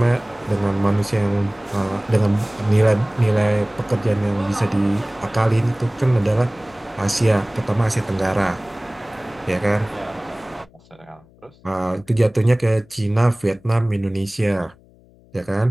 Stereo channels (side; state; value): left; noise; hum, 28 dB below the sound